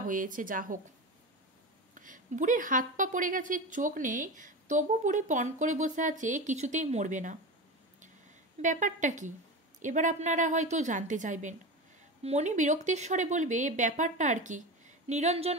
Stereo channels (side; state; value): both; normal; correlation 0.25